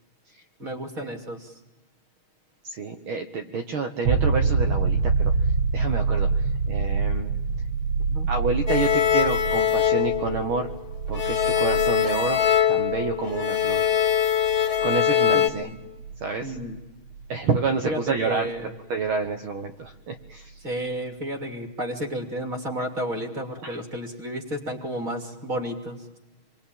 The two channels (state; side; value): late; left; 6.4 ms